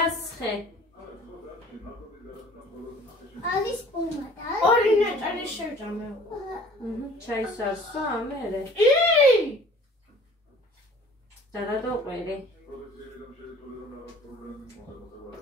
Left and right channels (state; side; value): normal; both; correlation 0.50